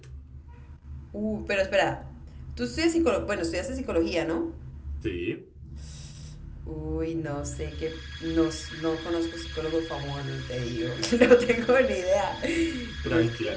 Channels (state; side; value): identical; both; correlation 1.00